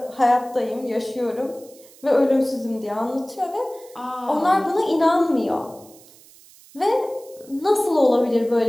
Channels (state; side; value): noise; right; hiss, 24 dB below the sound